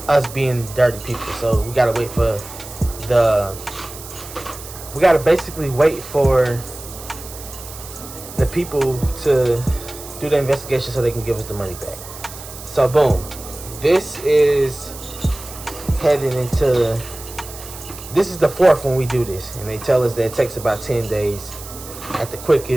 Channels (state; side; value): noise; right; hiss, 14 dB below the sound